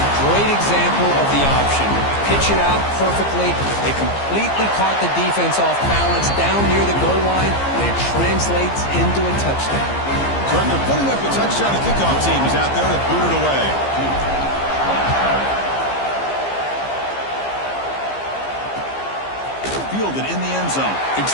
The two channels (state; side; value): late; right; 15 ms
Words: great example of the option. Pitch it out perfectly. They completely caught the defense off balance down near the goal line, and it translates into a touchdown. So after putting up the touchdown, the kickoff team is out there to boot it away. Fielded in the end zone. It's